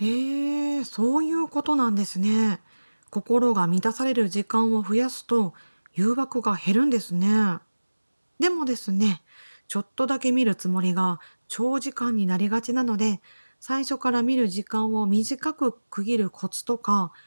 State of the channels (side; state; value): both; inverted; correlation -1.00